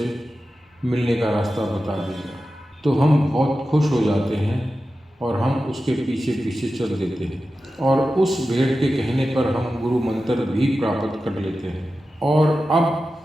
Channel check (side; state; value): both; normal; correlation 0.93